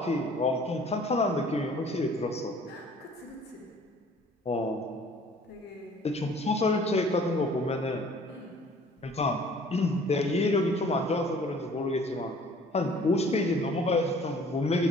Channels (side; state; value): both; normal; correlation 0.53